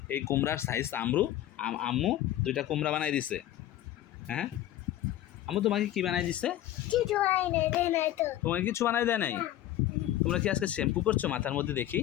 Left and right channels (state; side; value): quieter; right; 13.3 dB